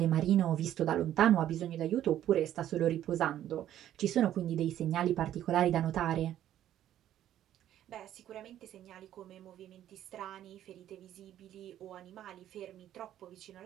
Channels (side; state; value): left; quieter; 11.8 dB